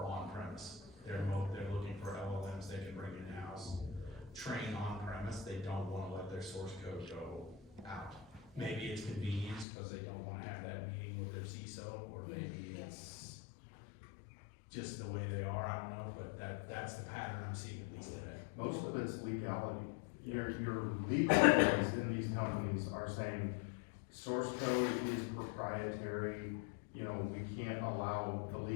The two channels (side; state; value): right; drops out; at 9.7 s